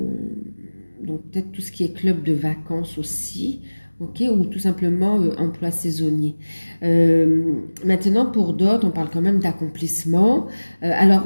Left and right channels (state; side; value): inverted; both; correlation -1.00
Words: peut-être tout ce qui est club de vacances aussi, ok, ou tout simplement emploi saisonnier. Maintenant, pour d'autres, on parle quand même d'accomplissement.